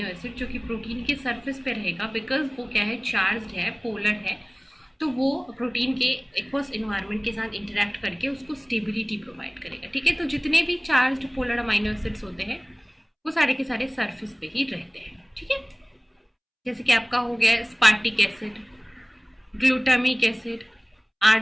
acid जो कि प्रोटीन के सरफेस पे रहेगा, बिकॉज वो क्या है? चार्ज्ड है, पोलर है, तो वो प्रोटीन के एक्वस इन्वायरमेंट के साथ इंटरेक्ट करके उसको स्टेबिलिटी प्रोवाइड करेगा। ठीक है, तो जितने भी चार्ज्ड पोलर अमाइनो एसिड्स होते हैं वो सारे के सारे सरफेस पे ही रहते हैं। ठीक है, जैसे कि आपका हो गया स्पार्टिक acid, glutamic acid,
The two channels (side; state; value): both; identical; correlation 1.00